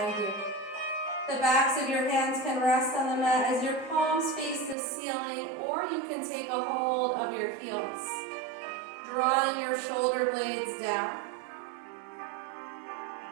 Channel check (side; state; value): left; drops out; at 4.8 s